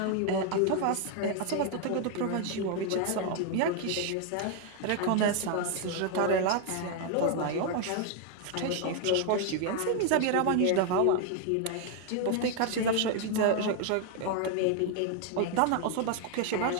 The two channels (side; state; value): both; different; correlation 0.00